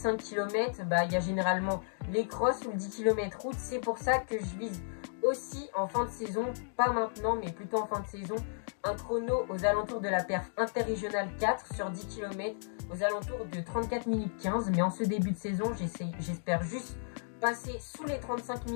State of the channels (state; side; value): silent; right; digital silence